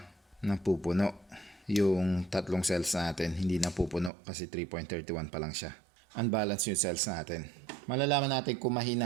napupuno. Yung tatlong cells natin hindi napupuno kasi 3.31 pa lang siya. Unbalanced yung cells natin. Malalaman natin kung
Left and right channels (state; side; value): drops out; left; at 4.1 s